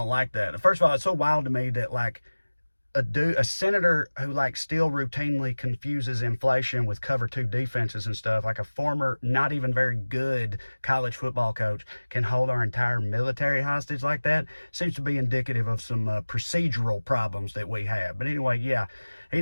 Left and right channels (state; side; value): inverted; both; correlation -1.00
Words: like that. First of all, it's so wild to me that, like, a senator who, like, still routinely confuses inflation with cover two defenses and stuff, like a former not even very good college football coach, can hold our entire military hostage like that. Seems to be indicative of some procedural problems that we have. But anyway, yeah, he